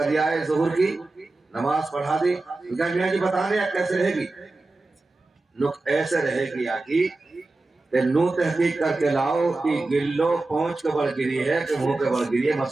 دیا ہے، ظہور کی نماز پڑھا دی. میاں جی بتانے کیسے رہے گی؟ نک ایسے رہے گی آگی کہ نو تحقیق کر کے لاؤ کہ گلو پہنچ کے بڑھ گری ہے کہ منہ کے بڑھ گری ہے.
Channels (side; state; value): left; quieter; 3.2 dB